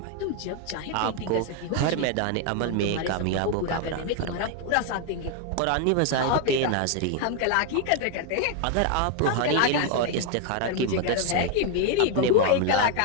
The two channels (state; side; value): different; both; correlation 0.01